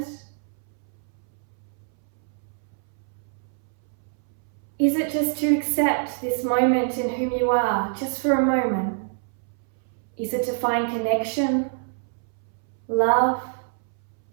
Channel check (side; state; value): left; silent; 61 dB below the other